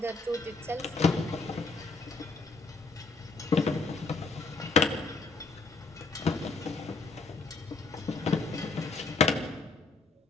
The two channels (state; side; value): quieter; right; 3.9 dB